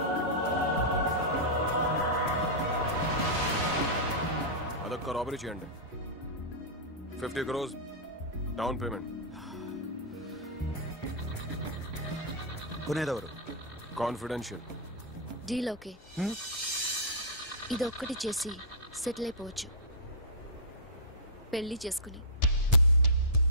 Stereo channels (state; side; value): normal; both; correlation -0.14